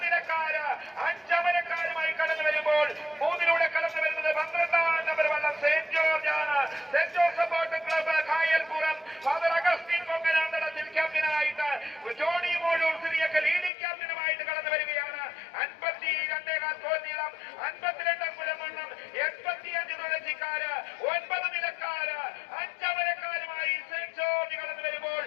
നിലക്കാര്, 5 അമരക്കാരുമായി കടന്നു വരുമ്പോൾ 3 കടന്നു വരുന്നത് 12 നമ്പർ വള്ളം സെന്റ് ജോർജ് ആണ്. Saint Joseph boat club Kayalpuram father Augustine Ponkananthadathil ക്യാപ്റ്റനായിട്ട് ജോണി മോളൂർ സിറിയക്ക് ലീഡിംഗ് ക്യാപ്റ്റനുമായിട്ട് കടന്നു വരികയാണ്. 52 ഗോൾ നീളം, 52 മുഴമണ്ണം, 85 തുളസിക്കാര്, 9 നിലക്കാര്, 5 അമരക്കാരുമായി സെന്റ് ജോർജ് കടന്നു വരുമ്പോൾ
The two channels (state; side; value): drops out; right; at 13.7 s